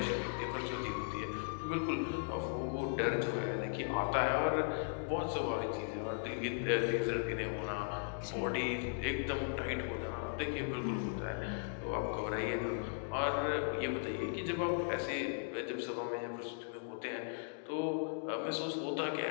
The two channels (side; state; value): right; silent; digital silence